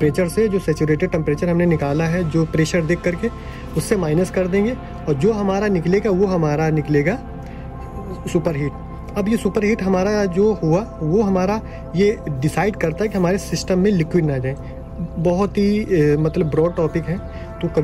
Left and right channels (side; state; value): both; identical; correlation 1.00